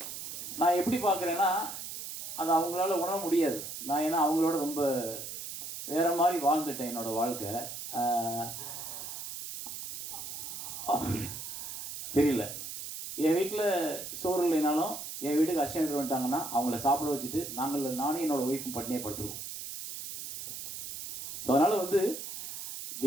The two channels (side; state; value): right; noise; hiss, 8 dB below the sound